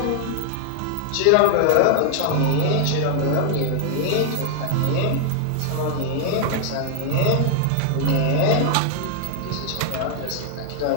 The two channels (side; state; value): both; different; correlation 0.00